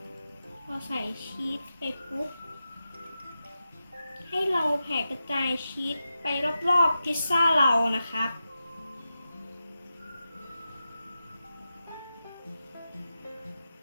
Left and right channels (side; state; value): both; inverted; correlation -0.91